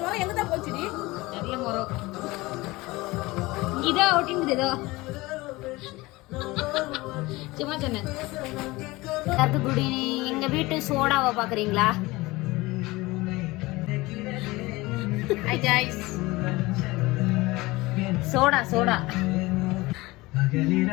எங்க தான் போச்சுடி? தெரியல மொரோ இதோ ஒட்டிங்குது இதோ சும்மா சொன்னேன். கருத்துக்குடி எங்க வீட்டு சோடாவை பாக்குறீங்களா? ஹாய் गाइस சோடா சோடா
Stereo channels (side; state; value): right; quieter; 21.1 dB